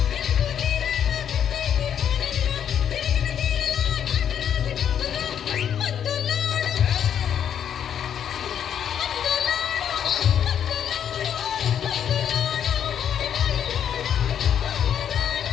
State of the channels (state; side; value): quieter; right; 8.9 dB